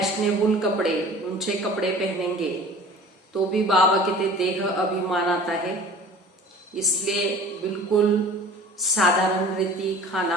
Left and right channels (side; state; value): both; normal; correlation 0.44